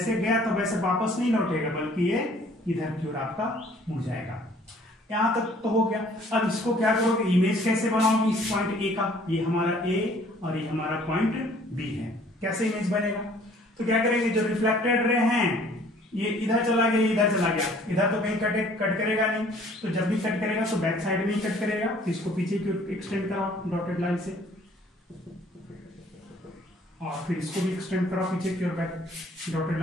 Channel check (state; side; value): normal; both; correlation 0.56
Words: गया तो वैसे वापस नहीं लौटेगा, बल्कि ये इधर की ओर आपका मुड़ जाएगा। यहां तक तो हो गया। अब इसको क्या करोगे, इमेज कैसे बनाओगे इस पॉइंट ए का, ये हमारा ए और ये हमारा पॉइंट बी है, कैसे इमेज बनेगा। तो क्या करेंगे, जो रिफ्लेक्टेड रे हैं ये इधर चला गया, इधर चला गया, इधर तो कहीं कट करेगा नहीं, तो जब भी कट करेगा तो बैक साइड में ही कट करेगा, तो इसको पीछे की ओर एक्सटेंड कराओ डॉटेड लाइन से, और फिर इसको भी एक्सटेंड कराओ पीछे की ओर बैक डॉटेड